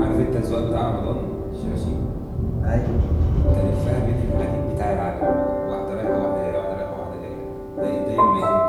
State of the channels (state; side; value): identical; both; correlation 1.00